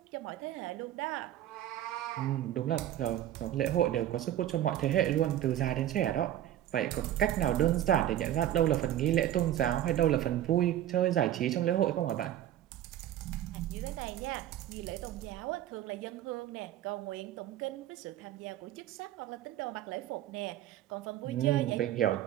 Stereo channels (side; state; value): left; quieter; 12.3 dB